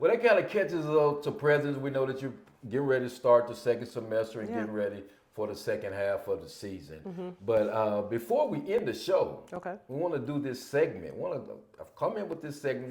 that kind of catches us up to present. We know that you're getting ready to start the second semester and getting ready for the second half of the season. But before we end the show, we want to do this segment. I've come in with this segment,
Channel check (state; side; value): identical; both; correlation 1.00